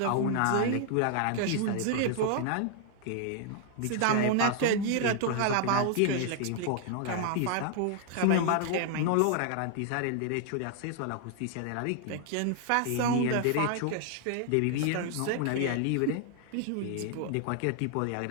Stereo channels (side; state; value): both; different; correlation 0.00